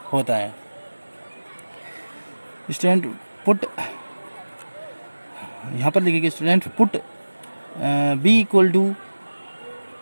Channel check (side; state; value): both; inverted; correlation -1.00